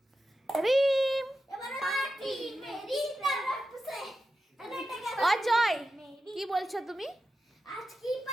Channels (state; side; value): normal; both; correlation 0.91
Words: রিম অজয় কি বলছো তুমি? আজকে